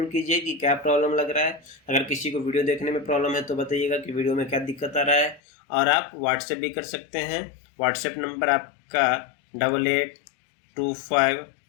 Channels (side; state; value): right; drops out; at 5.4 s